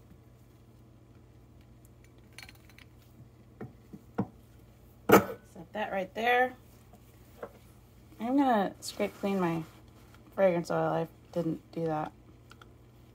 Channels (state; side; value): identical; both; correlation 1.00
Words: Set that right there. I'm gonna scrape clean my fragrance oil. I didn't do that